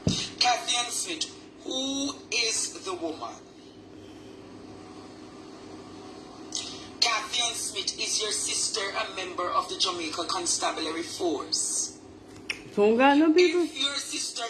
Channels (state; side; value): identical; both; correlation 1.00